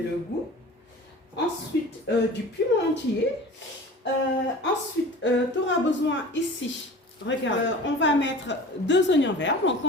le goût. Ensuite, du piment entier. Ensuite, tu auras besoin ici, regarde, on va mettre 2 oignons verts, donc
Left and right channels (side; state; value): both; normal; correlation 0.40